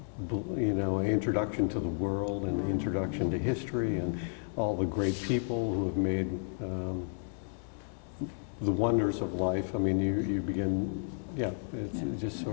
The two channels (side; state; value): right; silent; 56 dB below the other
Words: introduction to the world and the introduction to history and all the great people who have made the wonders of life. I mean, you begin, it's just